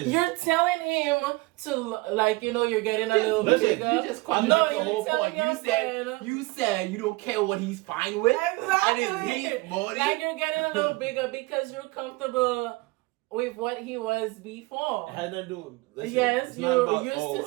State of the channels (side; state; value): left; quieter; 23.4 dB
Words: You're telling him to, like, you're getting a little bit bigger. You just the whole point. You said you don't care what he's fine with. Exactly. And his body. Like, you're getting a little bigger because you're comfortable with what he was before. It had nothing to do with. Yes, you're used